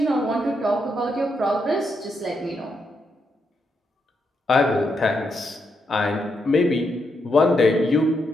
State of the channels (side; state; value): both; normal; correlation 0.81